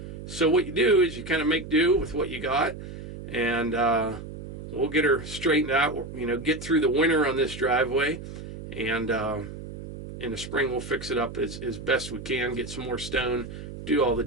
So what you do is you kind of make do with what you got, and we'll get her straightened out, get through the winter on this driveway, and in the spring we'll fix it up as best we can, get some more stone, do all the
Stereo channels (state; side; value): noise; right; hum, 11 dB below the sound